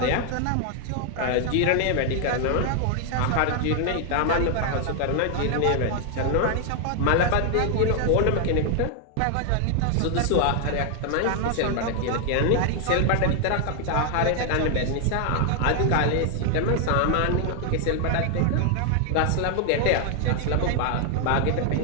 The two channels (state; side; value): different; both; correlation 0.00